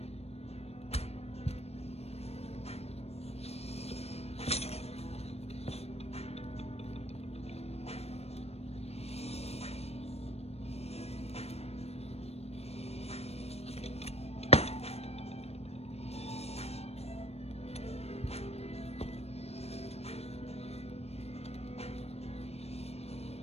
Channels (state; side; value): late; right; 0.30 ms